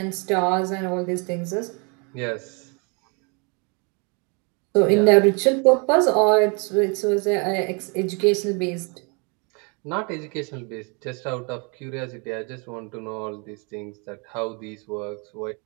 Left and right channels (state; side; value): quieter; left; 33.4 dB